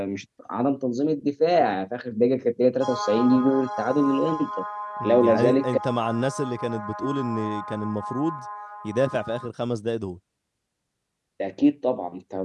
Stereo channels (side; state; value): both; identical; correlation 1.00